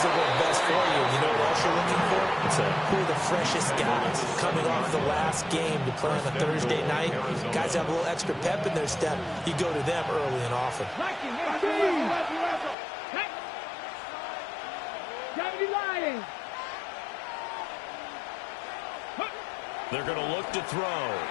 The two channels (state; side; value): drops out; right; at 12.8 s